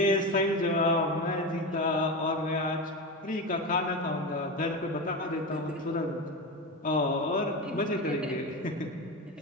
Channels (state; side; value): normal; both; correlation 0.21